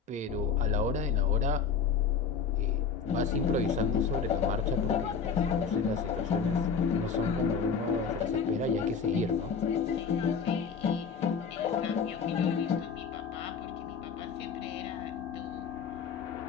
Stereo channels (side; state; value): right; quieter; 5.9 dB